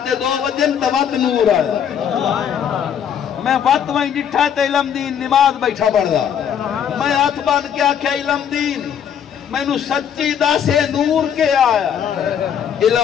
دے 2 بجے توت نور آیا میں وقت وہیں جٹھا تے علم دین نماز بیٹھا پڑھ دا میں ہاتھ بان کے آکھیا علم دین میں نو سچی دا سے نور کے آیا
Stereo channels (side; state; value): right; quieter; 8.5 dB